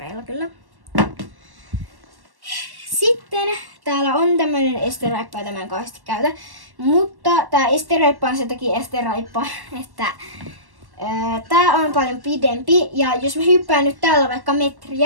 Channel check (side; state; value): left; late; 1.1 ms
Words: kyllä. Sitten täällä on tämmönen esteraippa, jota mä en kahdesti käytä. Mutta tää esteraippa on sen takia esteraippa, että tää on paljon pidempi. Ja jos mä hyppään nyt täällä vaikka